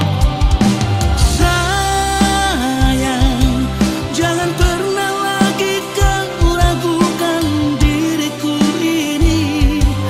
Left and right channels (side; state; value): both; identical; correlation 1.00